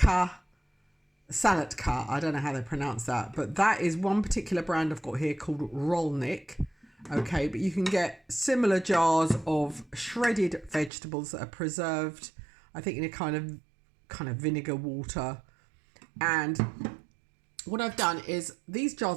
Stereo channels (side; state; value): left; drops out; at 10.9 s